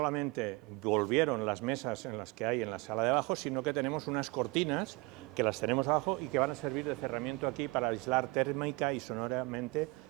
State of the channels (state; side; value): quieter; left; 25.0 dB